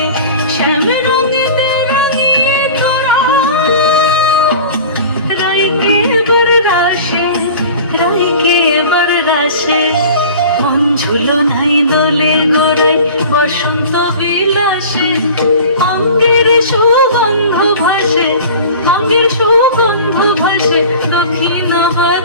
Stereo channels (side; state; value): both; inverted; correlation -0.40